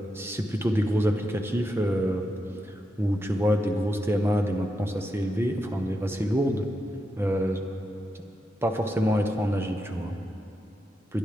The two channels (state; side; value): normal; both; correlation 0.85